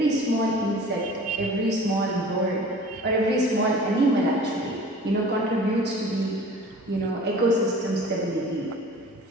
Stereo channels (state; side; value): normal; both; correlation 0.44